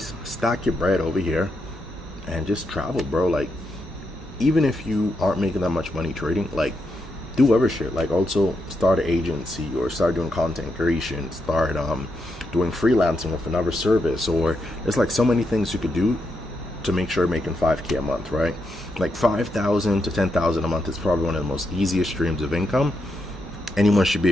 stack your bread over here, and just travel, bro. Like, even if you aren't making that much money trading, like, do other shit. Like, also start an agency or start doing content creation, start doing freelancing with another service, or there's like so many things you could do to make sure you're making $5K a month, right? Like $5,000 to $10,000 a month is probably one of the most easiest streams of income anyone should be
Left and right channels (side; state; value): both; normal; correlation 0.82